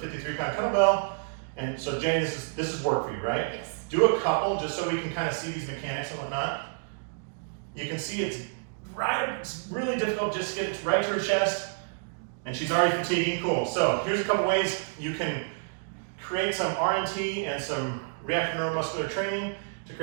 kettlebell. And so Jenny, this is work for you, right? Yes. Do a couple just so we can kind of see these mechanics and whatnot. You can see it's really difficult just to get right to her chest. And she's already fatiguing, cool. So here's a couple ways you can create some RNT and some reactive neuromuscular training to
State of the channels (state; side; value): silent; left; digital silence